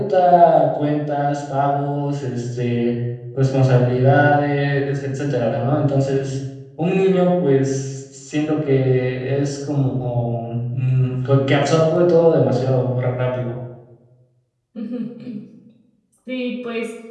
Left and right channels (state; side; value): identical; both; correlation 1.00